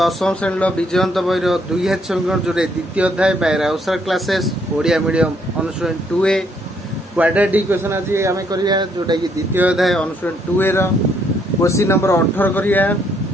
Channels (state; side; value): normal; both; correlation 0.70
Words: श्रेणी विजयंत बहिर 2000 समीकरण जोरे द्वितीय अध्याय by Rahul sir classes Odia medium अनुसरण 2A क्वाड्रेटिक इक्वेशन आज आम करिया जोटा कि द्वितीय अध्याय अनुसरण 2A रो क्वेश्चन नंबर 18 करिया।